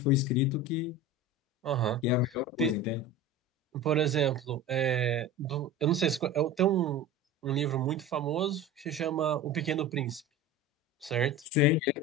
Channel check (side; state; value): both; normal; correlation 0.32